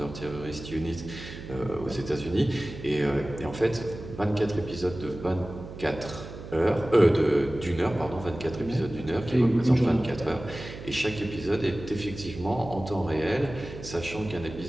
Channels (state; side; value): noise; right; hum, 12 dB below the sound